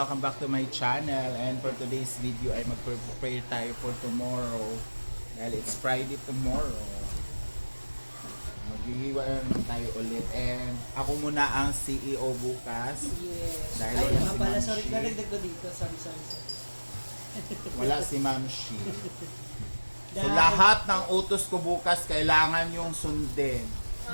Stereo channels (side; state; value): both; inverted; correlation -1.00